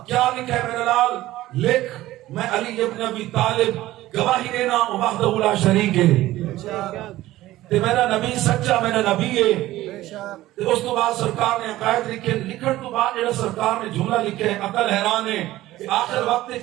کیا لکھا ہے میرا لال؟ لکھ میں علی ابن ابی طالب گواہی دینا وحدہ لا شریک ہے، تے میرا نبی سچا میرا نبی ہے۔ اس تو بعد سرکار نے عقائد لکھے، لکھن تو بعد جڑا سرکار نے جملہ لکھے عقل حیران ہے کہ آخر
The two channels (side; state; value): left; quieter; 16.0 dB